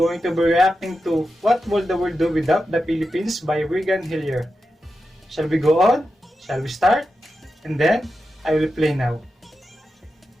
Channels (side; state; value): both; normal; correlation 0.90